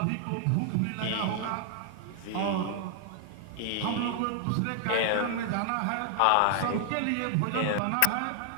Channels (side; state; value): both; different; correlation 0.00